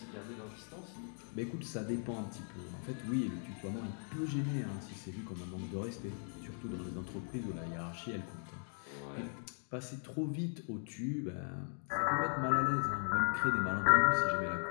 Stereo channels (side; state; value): right; silent; 52 dB below the other